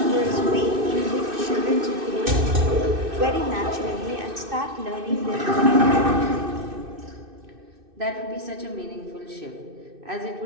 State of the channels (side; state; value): left; late; 2.6 ms